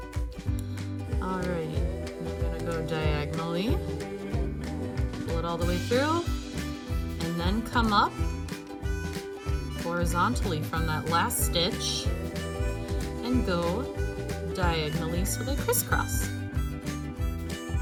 Alrighty, I'm gonna go diagonally, pull it all the way through, and then come up horizontally from that last stitch and go diagonally so they crisscross.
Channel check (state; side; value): identical; both; correlation 1.00